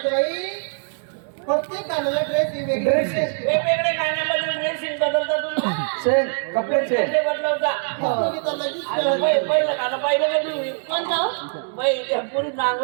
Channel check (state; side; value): silent; left; digital silence